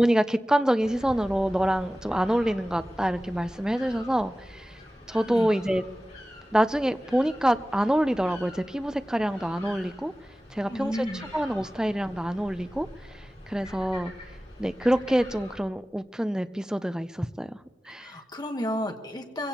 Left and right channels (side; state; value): both; normal; correlation 0.96